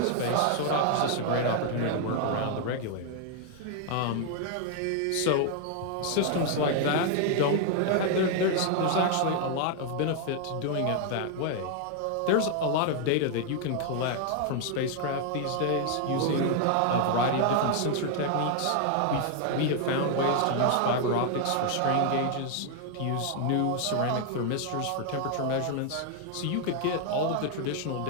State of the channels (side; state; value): both; different; correlation 0.00